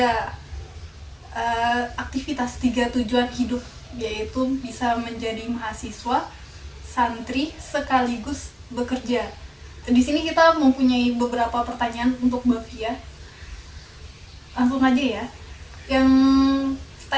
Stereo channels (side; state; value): both; identical; correlation 1.00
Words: tujuan hidup, yaitu bisa menjadi mahasiswa, santri, sekaligus bekerja. Di sini kita mempunyai beberapa pertanyaan untuk Mbak Fia. Langsung aja ya. Yang